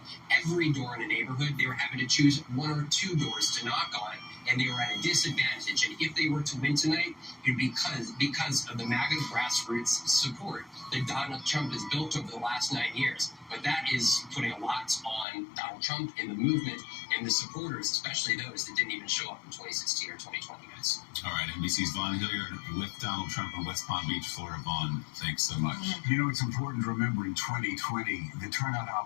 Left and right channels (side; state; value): right; drops out; at 15.2 s